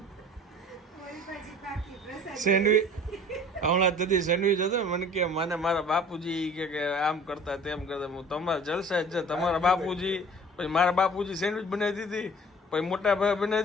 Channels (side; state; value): both; normal; correlation 0.46